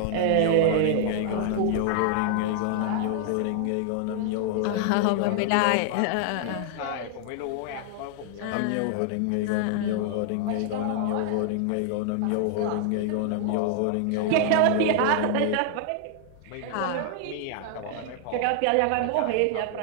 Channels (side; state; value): both; different; correlation 0.00